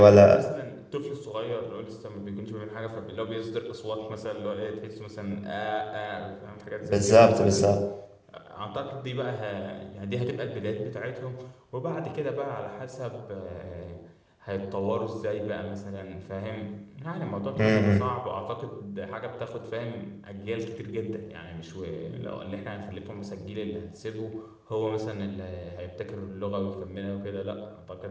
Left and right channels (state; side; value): identical; both; correlation 1.00